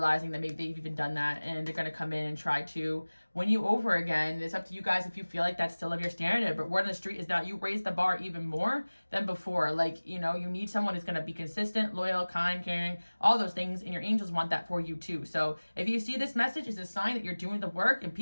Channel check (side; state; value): both; inverted; correlation -1.00